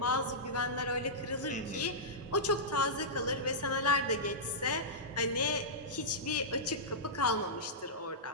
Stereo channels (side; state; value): both; normal; correlation -0.14